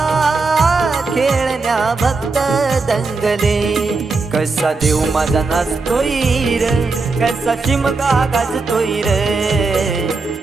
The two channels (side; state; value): left; quieter; 4.0 dB